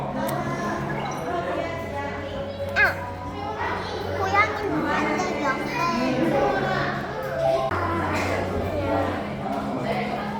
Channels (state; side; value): identical; both; correlation 1.00